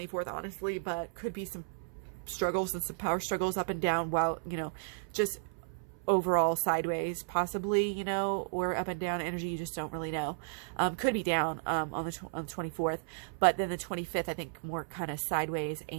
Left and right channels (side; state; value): left; silent; 55 dB below the other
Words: honestly, but could be some struggles and some power struggles up and down, while, you know, just overall sideways, possibly, you know, or up and down energy. You just don't really know. Could be down on the 24th, but then the 25th, I think more kind of sideways